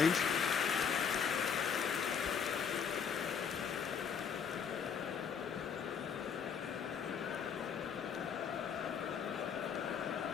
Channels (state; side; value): quieter; right; 6.9 dB